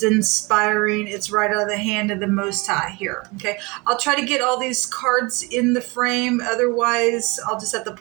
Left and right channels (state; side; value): quieter; left; 26.4 dB